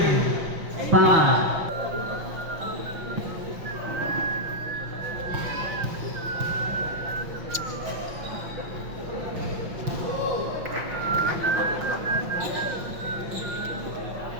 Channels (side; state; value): left; late; 5.9 ms